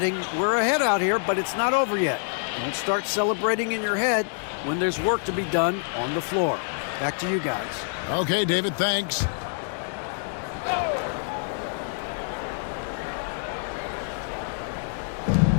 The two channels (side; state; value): right; silent; digital silence